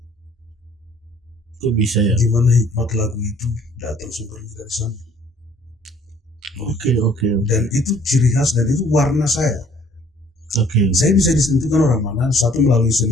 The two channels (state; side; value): normal; both; correlation 0.58